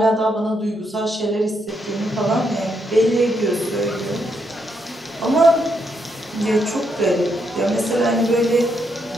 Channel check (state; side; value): normal; both; correlation 0.78